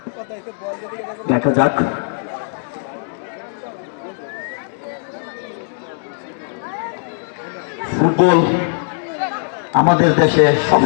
দেখা যাক। ফুটবল আমাদের দেশে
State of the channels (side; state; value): right; silent; 66 dB below the other